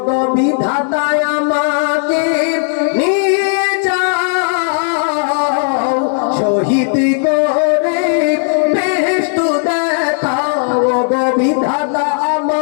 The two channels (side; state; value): right; silent; digital silence